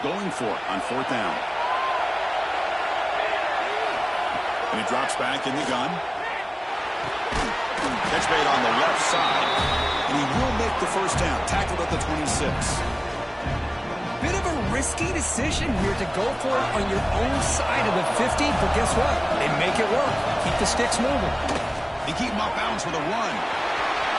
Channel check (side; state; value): both; identical; correlation 1.00